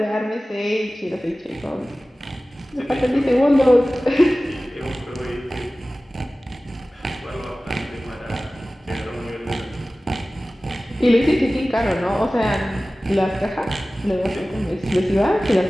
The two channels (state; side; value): normal; both; correlation 0.97